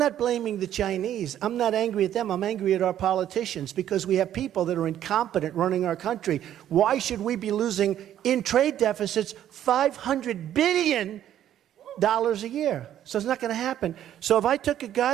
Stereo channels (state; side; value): quieter; left; 11.2 dB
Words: blaming the Chinese. I'm not angry at them. I'm angry at our politicians because we have people that are incompetent running our country. Why should we be losing in trade deficits $500 billion a year? So it's not going to happen. So if I took a